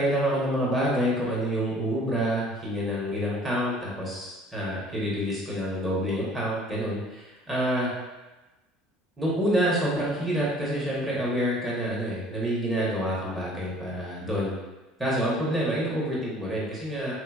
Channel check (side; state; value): both; normal; correlation 0.53